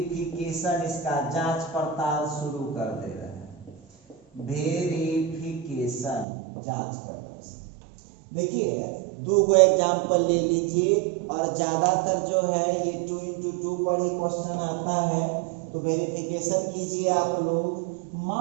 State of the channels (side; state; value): left; drops out; at 6.2 s